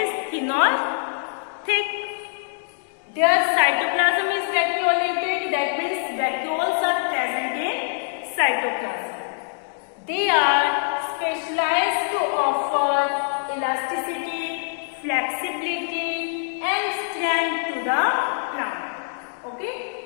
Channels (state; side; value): silent; right; digital silence